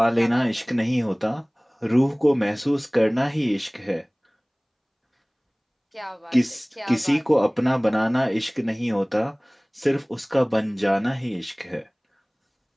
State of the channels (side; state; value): both; identical; correlation 1.00